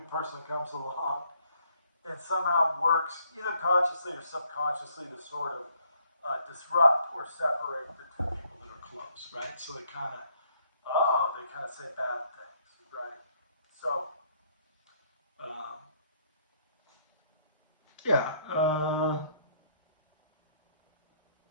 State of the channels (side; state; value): both; inverted; correlation -0.68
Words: person comes along and somehow works either consciously or subconsciously to sort of disrupt or separate the two people that are close, right? So they kind of, they kind of say bad things, right? So, um, yeah, I'm